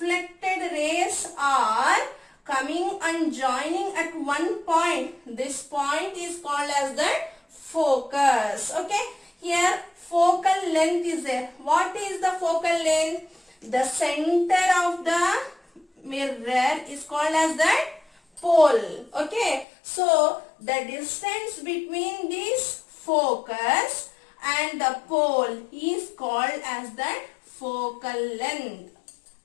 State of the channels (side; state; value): right; drops out; at 19.7 s